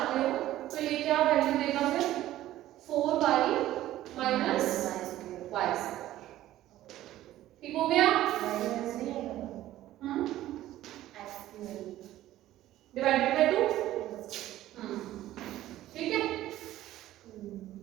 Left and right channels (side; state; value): left; quieter; 14.3 dB